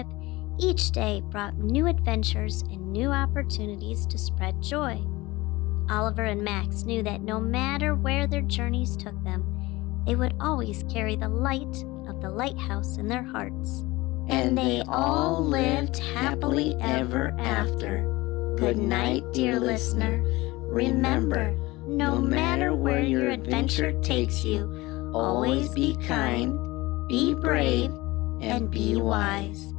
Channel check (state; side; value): quieter; right; 20.7 dB